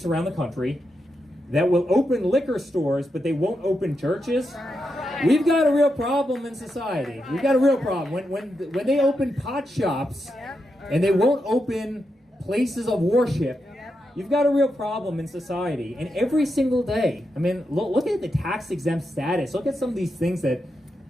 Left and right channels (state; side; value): normal; both; correlation 0.86